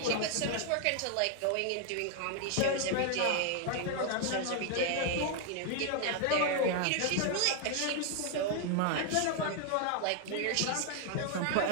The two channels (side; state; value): both; different; correlation 0.00